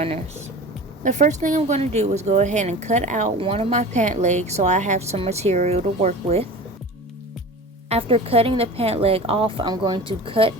The first thing I'm going to do is go ahead and cut out one of my pant legs so I have some material to work with. After cutting the pant leg off, I'm going to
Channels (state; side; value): normal; both; correlation 0.36